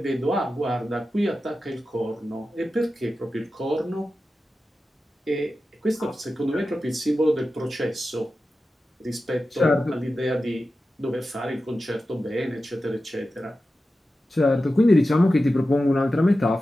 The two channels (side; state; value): both; normal; correlation 0.93